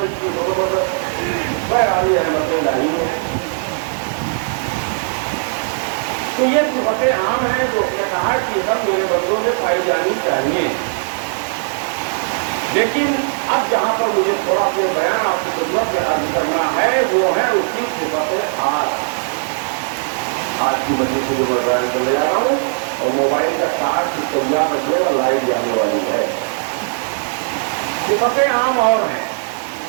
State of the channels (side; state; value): left; silent; digital silence